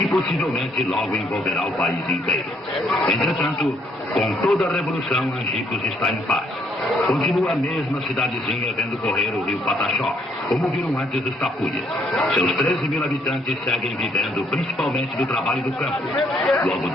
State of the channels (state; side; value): normal; both; correlation 0.69